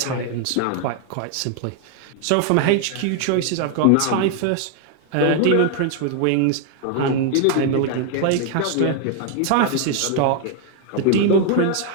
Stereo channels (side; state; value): both; different; correlation 0.00